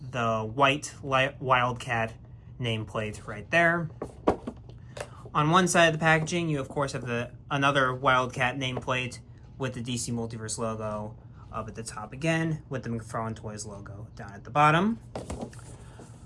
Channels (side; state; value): both; identical; correlation 1.00